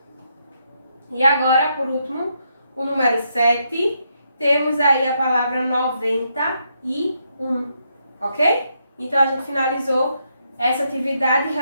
E agora, por último, o número 7, temos aí a palavra 91, ok? Então, a gente finalizou essa atividade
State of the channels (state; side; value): inverted; both; correlation -0.78